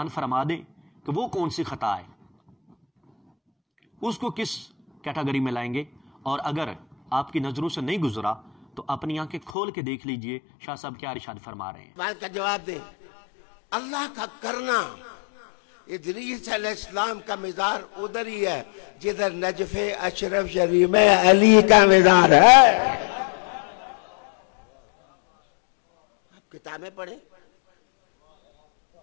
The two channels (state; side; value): drops out; right; at 9.5 s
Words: فرما دیں کہ وہ کون سی خطا ہے، اس کو کس کیٹاگری میں لائیں گے، اور اگر آپ کی نظروں سے نہیں گزرا تو اپنی آنکھیں کھول کے دیکھ لیجئے شاہ صاحب کیا ارشاد فرما رہے ہیں۔ بات کا جواب دیں۔ اللہ کا کرنا، ادریس علیہ السلام کا مزار ادھر ہی ہے جدھر نجف اشرف شریف میں علی کا مزار ہے۔ آپ کتابیں پڑھیں